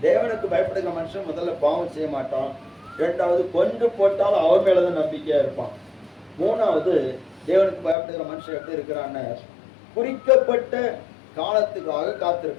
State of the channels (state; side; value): drops out; right; at 8.0 s